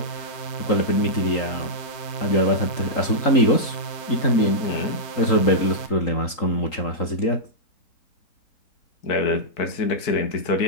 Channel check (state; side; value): late; right; 3.8 ms